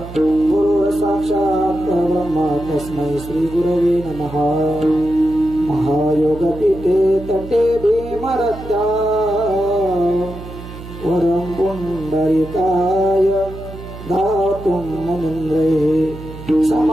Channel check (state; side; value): noise; right; hum, 13 dB below the sound